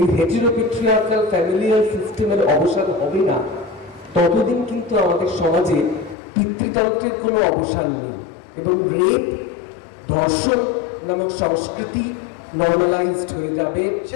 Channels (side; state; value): right; drops out; at 6.2 s